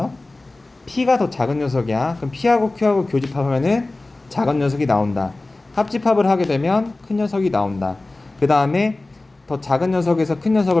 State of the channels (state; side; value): quieter; right; 3.0 dB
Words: P가 더 작은 녀석이야. 그럼 P하고 Q하고 교집합하면은 작은 녀석이 나온다. 합집합을 하게 되면 큰 녀석이 나온다. 그 다음에 더 작은 녀석에서 큰